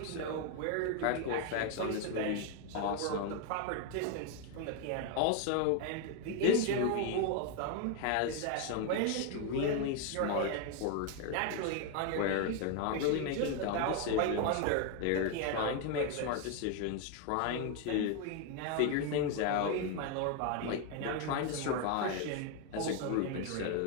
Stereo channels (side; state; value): both; different; correlation 0.01